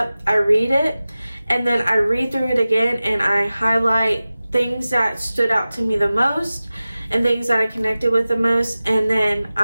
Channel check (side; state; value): both; inverted; correlation -0.96